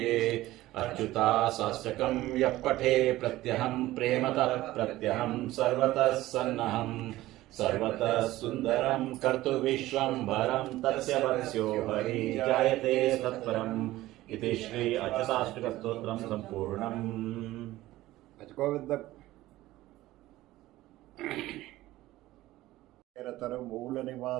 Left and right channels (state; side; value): quieter; left; 16.5 dB